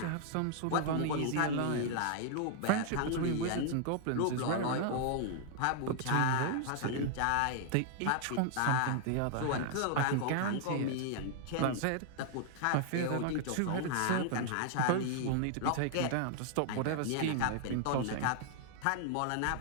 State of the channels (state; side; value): different; both; correlation 0.00